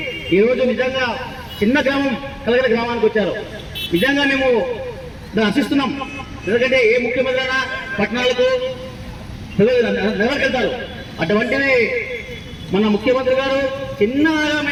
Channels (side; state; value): both; identical; correlation 1.00